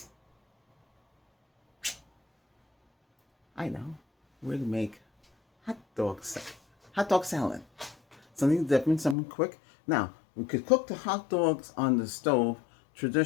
I know, we're going to make hot dog salad. Something different, something quick. Now we could cook the hot dogs on the stove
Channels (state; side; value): drops out; right; at 9.2 s